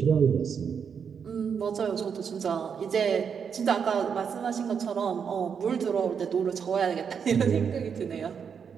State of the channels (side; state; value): left; quieter; 6.9 dB